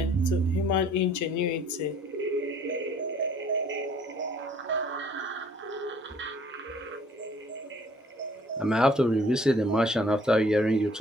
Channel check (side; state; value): both; normal; correlation 0.57